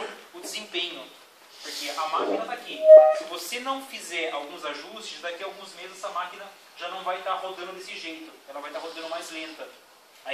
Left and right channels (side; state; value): both; identical; correlation 1.00